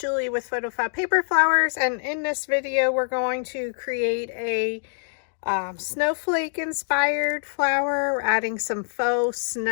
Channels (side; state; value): right; silent; digital silence